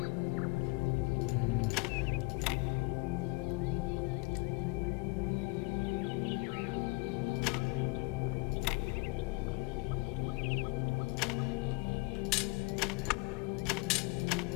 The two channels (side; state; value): right; quieter; 27.3 dB